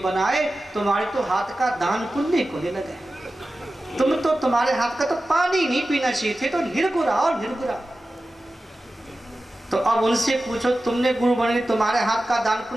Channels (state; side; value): normal; both; correlation 0.95